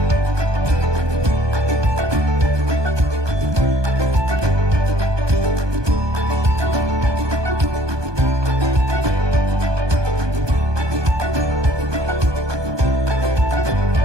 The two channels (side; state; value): left; late; 1.2 ms